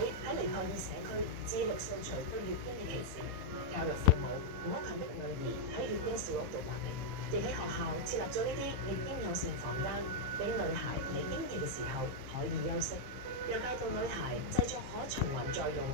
喺尼泊爾社區致力掃除對月經嘅歧視，教育父母唔好強迫女兒喺月經小屋度劃嚟，亦喺學校設立咗呢啲月經友善房間，俾女孩嚟經期嘅時候可以休息，又教導女孩製作可循環再用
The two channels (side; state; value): left; late; 15 ms